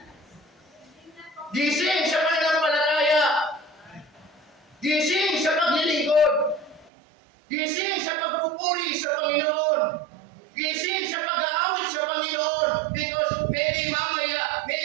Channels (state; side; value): drops out; left; at 6.9 s